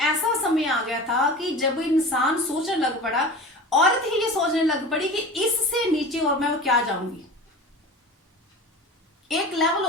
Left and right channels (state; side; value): normal; both; correlation 0.35